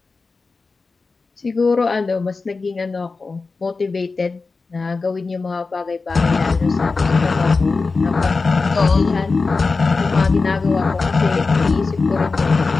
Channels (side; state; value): right; quieter; 4.1 dB